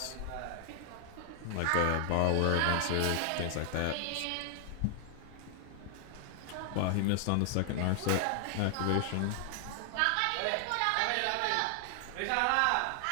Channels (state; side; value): different; both; correlation 0.00